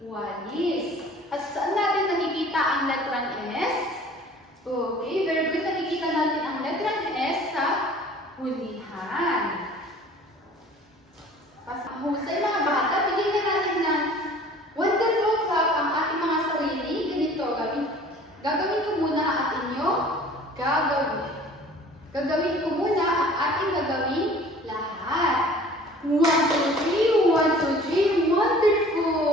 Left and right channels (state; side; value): normal; both; correlation 0.48